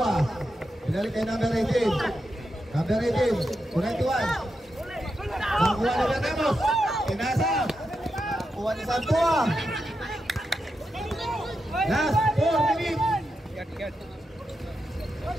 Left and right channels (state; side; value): normal; both; correlation 0.87